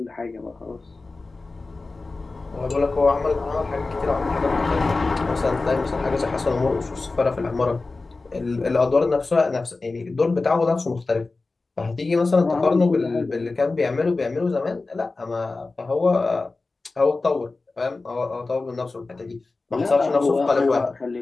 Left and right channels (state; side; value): quieter; right; 3.6 dB